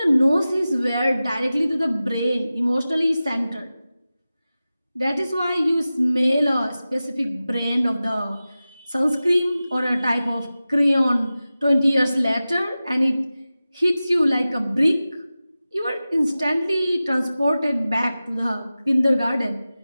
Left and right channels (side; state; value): both; inverted; correlation -0.95